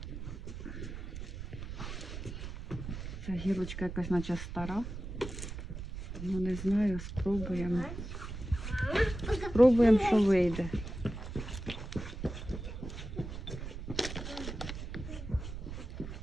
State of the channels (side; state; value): right; noise; rumble, 8 dB below the sound